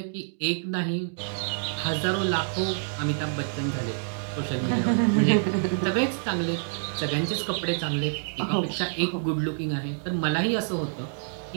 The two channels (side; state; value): left; silent; digital silence